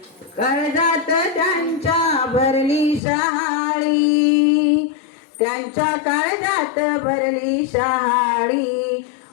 कर्जात त्यांच्या भरली शहाळी. त्यांच्या काळजात भरली शहाळी,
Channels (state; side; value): drops out; right; at 3.0 s